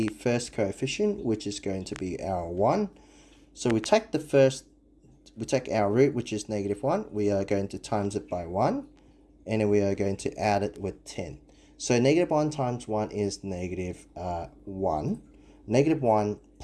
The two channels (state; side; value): identical; both; correlation 1.00